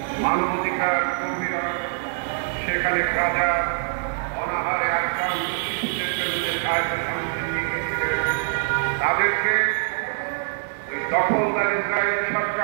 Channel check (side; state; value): left; silent; 63 dB below the other